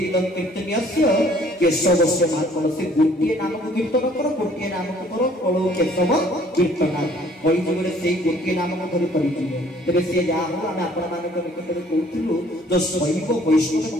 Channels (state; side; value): normal; both; correlation 0.58